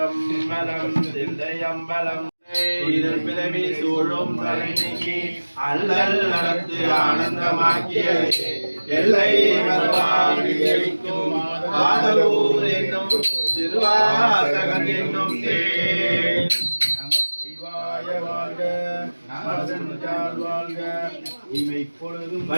தில்லையம்பலம் இதன் பிறவி சூழும் தலை நீக்கி அல்லல் நடத்து ஆனந்தமாக்கிய எல்லை மறுவாக்கும் ஆதலூர் என்னும் திருவாசகம் என்னும் தேன். நமச்சிவாய வாழ்க, நமதஞ்சால் வாழ்க, இமை பொழுதும்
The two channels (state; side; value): inverted; both; correlation -1.00